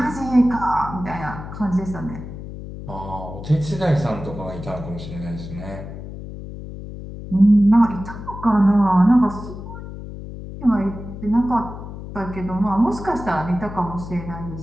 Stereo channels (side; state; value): left; noise; hum, 11 dB below the sound